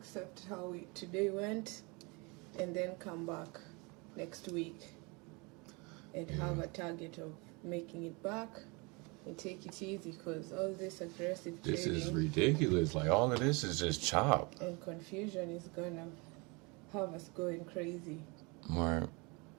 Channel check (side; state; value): left; quieter; 28.6 dB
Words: how today went and then come back next week and have a target of making it back and take it easy, because all this aggressive This trading is ridiculous. Like, all of this is just chop. and confusion is gonna have us going crazy. Right.